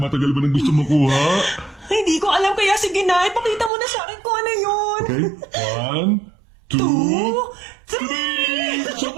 ba nang gusto makuha? Hindi ko alam kaya sige na. Ipakita mo na sa akin kung ano yun. Okay? 1, 2, 2, 3.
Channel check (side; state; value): left; drops out; at 3.7 s